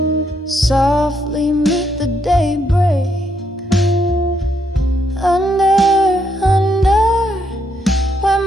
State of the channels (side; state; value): both; normal; correlation 0.75